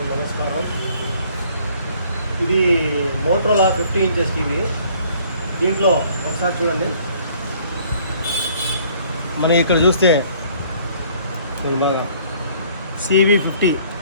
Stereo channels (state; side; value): inverted; both; correlation -0.59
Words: నమస్కారం. ఇది Motorola 50 inches TV. దీంట్లో ఒకసారి చూడండి, మనం ఇక్కడ చూస్తే బాగా CV50